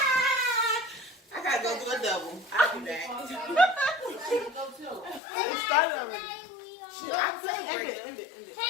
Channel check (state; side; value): drops out; right; at 5.2 s